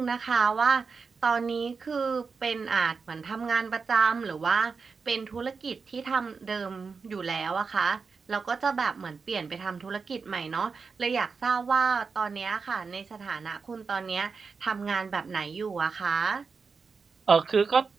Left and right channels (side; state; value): left; quieter; 5.1 dB